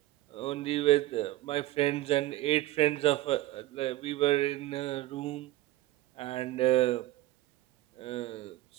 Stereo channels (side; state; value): left; quieter; 16.3 dB